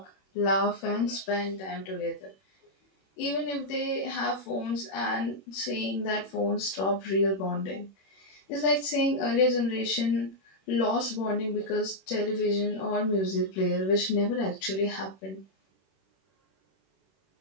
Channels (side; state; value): right; late; 21 ms